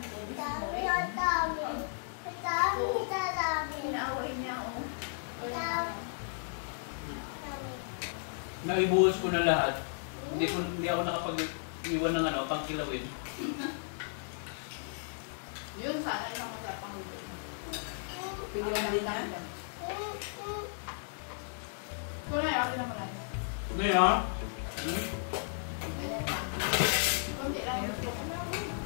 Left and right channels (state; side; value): silent; right; 55 dB below the other